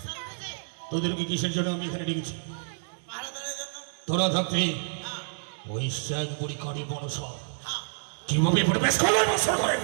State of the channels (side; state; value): left; silent; digital silence